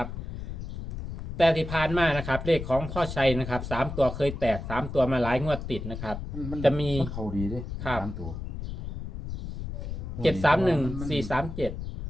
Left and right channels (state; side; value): noise; left; rumble, 7 dB below the sound